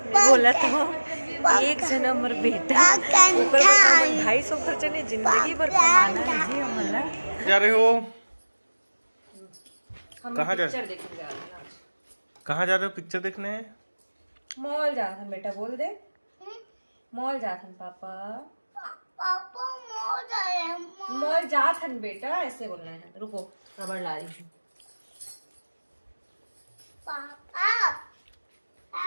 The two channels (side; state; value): both; inverted; correlation -1.00